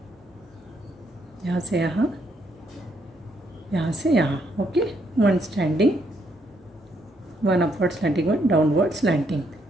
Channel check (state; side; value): normal; both; correlation 0.73